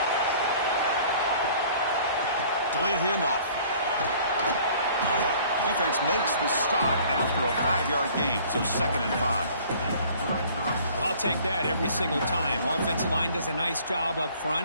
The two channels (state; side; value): inverted; both; correlation -0.53